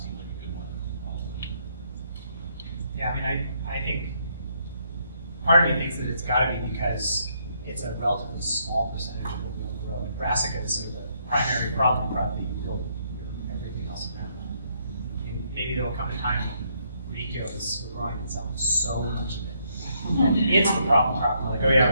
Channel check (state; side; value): inverted; both; correlation -0.72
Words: like a good one. Yeah, I mean, I think part of me thinks that it's got to be because it's a relatively small percentage of what we'll grow. And Brassica is sort of the primary problem crop that you build everything else around. I mean, maybe there will come a time when radicchio is growing and selling so much of it. And it's the problem crop. We're like, oh yeah,